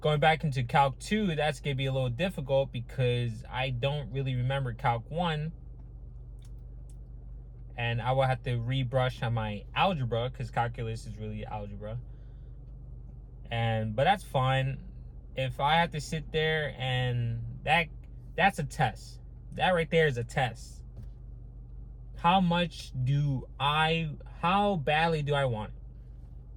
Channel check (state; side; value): identical; both; correlation 1.00